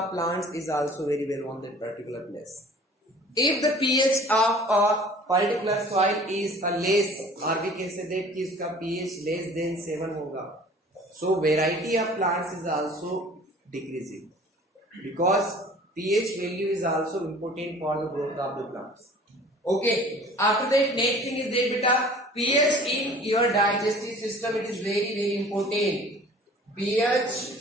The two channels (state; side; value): normal; both; correlation 0.48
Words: plants is also very well on that particular place. If the pH of a particular soil is a less, or we can say that कि इसका pH less than 7 होगा, so variety of plants is also decreasing because pH value is also important for the growth of the plants. Okay, after that next thing is that beta pH in your digestive system, it is very important.